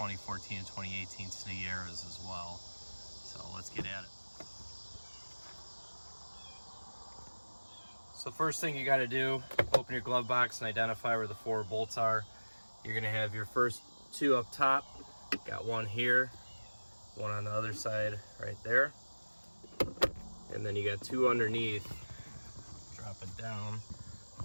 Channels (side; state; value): both; inverted; correlation -1.00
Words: and 2018 Sierras as well. So let's get at it. So first thing you got to do, open your glove box and identify where the 4 bolts are. You're going to have your first 2 up top. Got one here, one on the other side right there. And then you got 2 underneath. Drop it down.